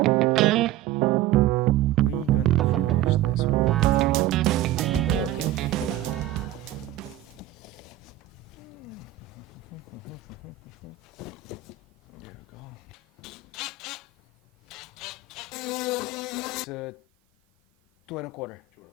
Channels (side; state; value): left; quieter; 11.0 dB